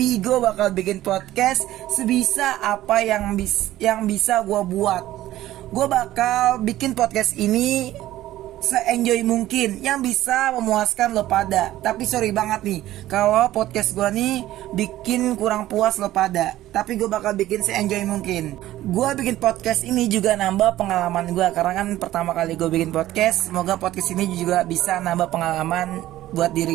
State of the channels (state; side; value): quieter; left; 14.6 dB